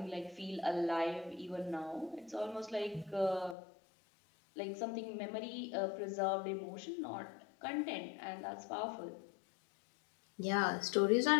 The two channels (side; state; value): right; drops out; at 3.6 s